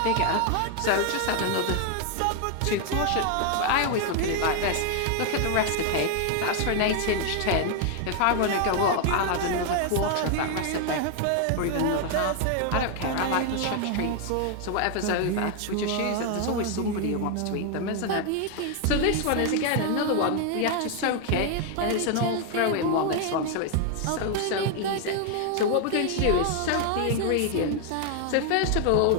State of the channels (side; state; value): both; different; correlation 0.00